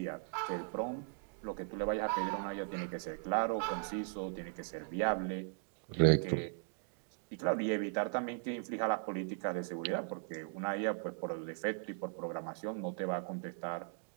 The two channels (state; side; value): silent; left; 52 dB below the other